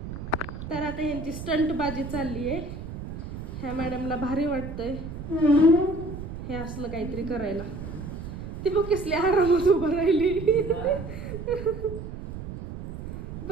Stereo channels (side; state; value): right; noise; rumble, 9 dB below the sound